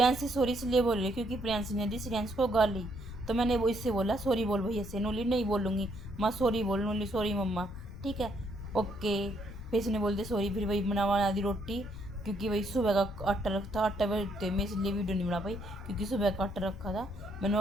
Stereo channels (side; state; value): left; noise; rumble, 13 dB below the sound